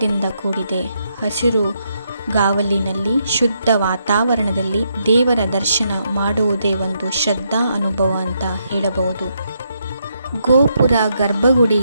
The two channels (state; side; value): inverted; both; correlation -0.78